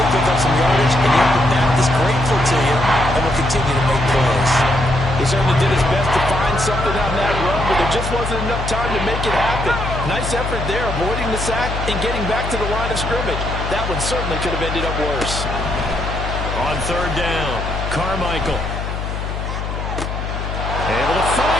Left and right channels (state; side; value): noise; left; hum, 5 dB below the sound